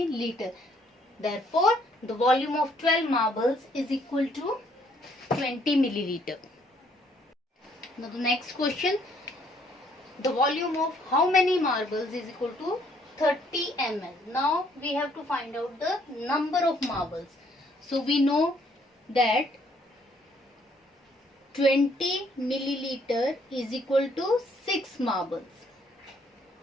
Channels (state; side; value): normal; both; correlation 0.66